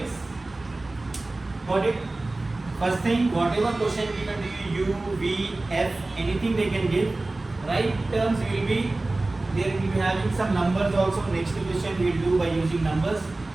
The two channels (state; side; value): quieter; left; 3.0 dB